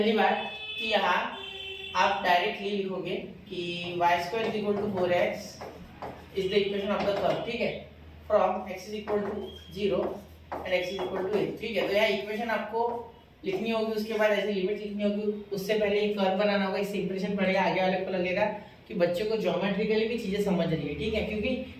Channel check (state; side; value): identical; both; correlation 1.00